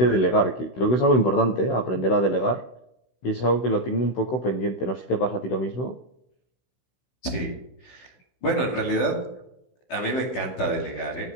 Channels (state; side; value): late; right; 16 ms